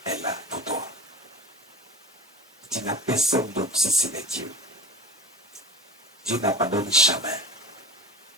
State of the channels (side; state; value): both; normal; correlation 0.34